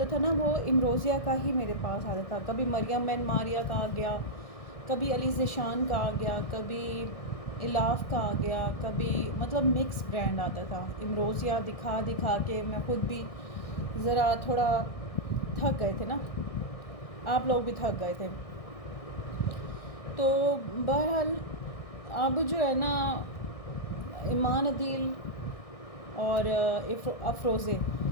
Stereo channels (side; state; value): right; late; 1.6 ms